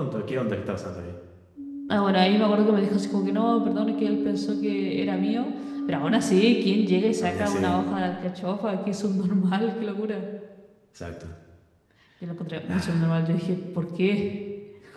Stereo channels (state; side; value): identical; both; correlation 1.00